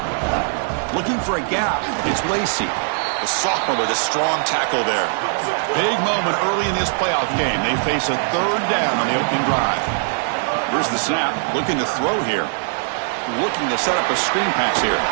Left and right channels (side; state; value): left; silent; digital silence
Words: Looking for a gap. It's Lacey, the sophomore with a strong tackle there. Big moment early in this playoff game. They face a third down on the opening drive. Here's the snap. Looking to throw here. Looking to set up a screen pass here.